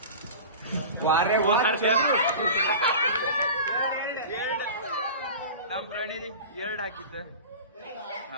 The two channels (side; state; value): both; inverted; correlation -0.34